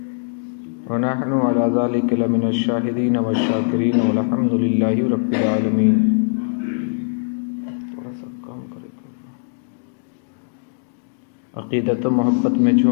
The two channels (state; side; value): silent; right; digital silence